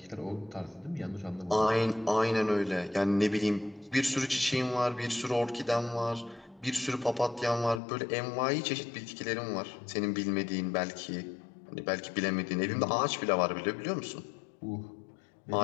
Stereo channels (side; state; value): right; drops out; at 7.8 s